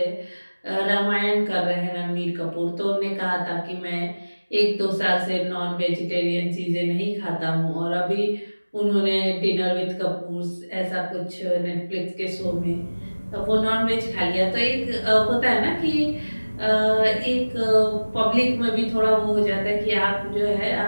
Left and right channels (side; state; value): both; inverted; correlation -1.00